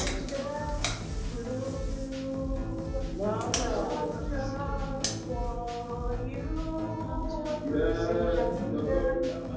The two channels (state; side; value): identical; both; correlation 1.00